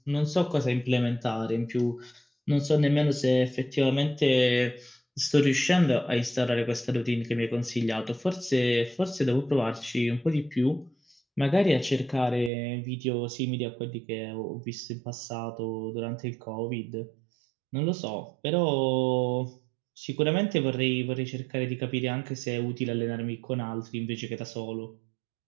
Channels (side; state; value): left; drops out; at 12.5 s